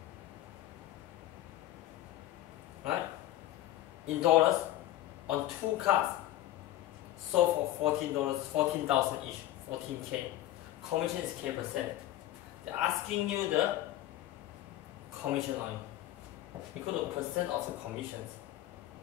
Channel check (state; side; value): quieter; right; 14.2 dB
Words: Right? In dollars, on 2 cars, sold for $14, 14,000 each, 14K. Commission is K%. They're asking you the commission on equal to percent of the commissions